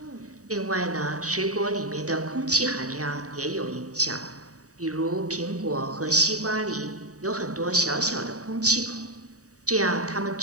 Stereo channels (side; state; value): left; late; 0.66 ms